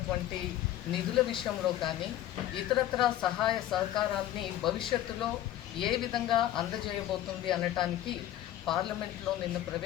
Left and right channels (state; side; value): quieter; right; 12.9 dB